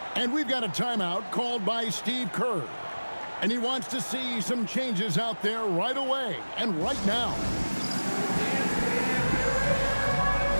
And we've got a timeout called by Steve Kerr. And he wants to see some changes out there right away and right now.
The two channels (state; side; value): inverted; both; correlation -1.00